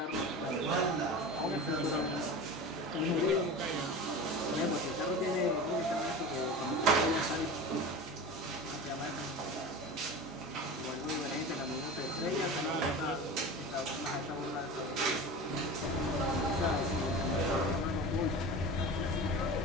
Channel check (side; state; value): both; normal; correlation 0.32